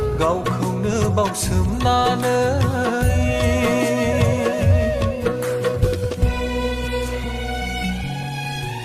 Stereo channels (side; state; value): both; identical; correlation 1.00